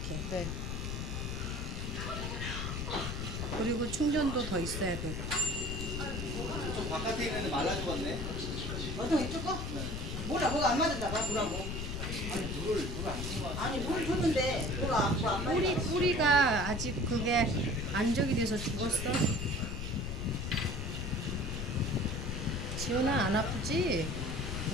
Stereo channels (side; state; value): left; noise; rumble, 4 dB below the sound